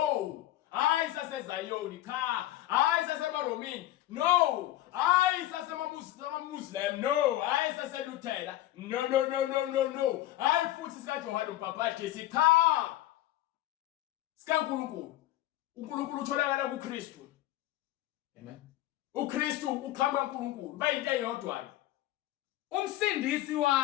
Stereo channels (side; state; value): right; quieter; 14.9 dB